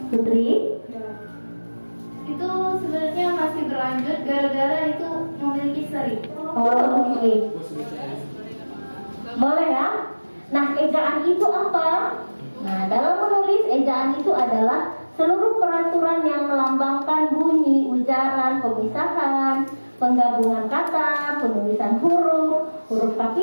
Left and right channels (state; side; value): inverted; both; correlation -1.00